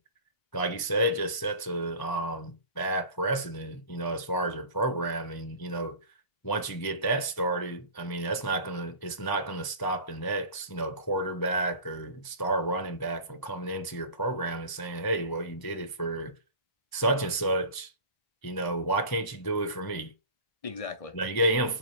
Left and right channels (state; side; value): late; right; 1.0 ms